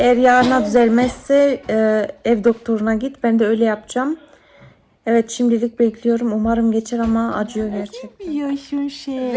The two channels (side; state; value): both; identical; correlation 1.00